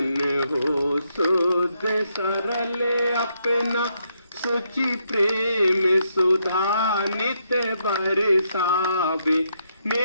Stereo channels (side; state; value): both; inverted; correlation -0.77